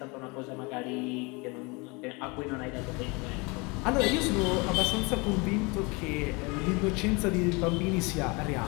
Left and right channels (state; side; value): quieter; right; 27.9 dB